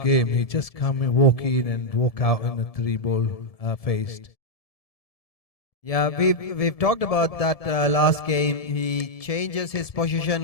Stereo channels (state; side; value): late; right; 1.7 ms